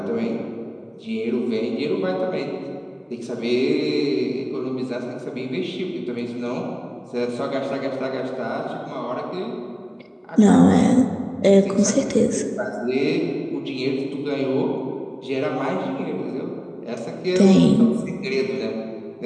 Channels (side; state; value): both; identical; correlation 1.00